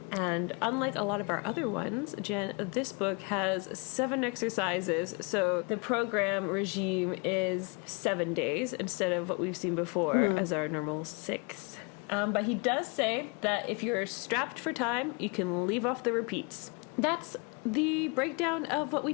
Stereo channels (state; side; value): quieter; right; 32.4 dB